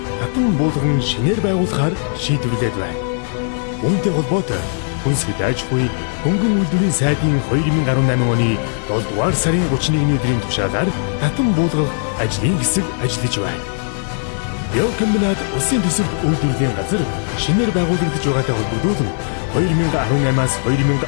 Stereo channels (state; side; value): silent; right; 55 dB below the other